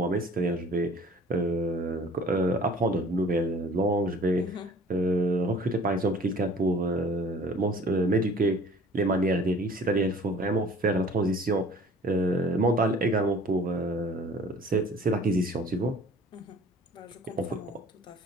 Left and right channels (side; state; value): both; normal; correlation 0.49